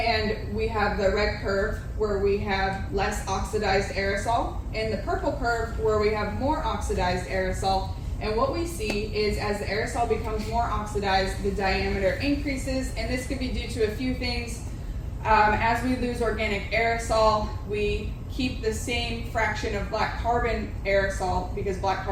we have the red curve where we have less oxidized aerosol, and the purple curve where we have more oxidized aerosol. And what we see is as the aerosol becomes more oxidized, the diameter increases, and this could be due to a few things. As we lose organic aerosol, we keep the same fraction of black carbon aerosol because black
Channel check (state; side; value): identical; both; correlation 1.00